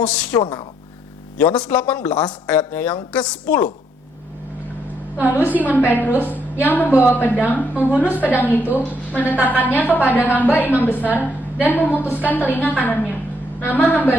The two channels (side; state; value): both; normal; correlation 0.73